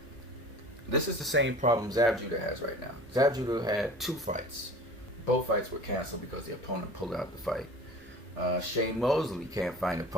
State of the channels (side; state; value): both; normal; correlation 0.41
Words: this is the same problem Zab Judah has right now. Zab Judah had 2 fights. Both fights were canceled because the opponent pulled out the fight. Shane Mosley can't find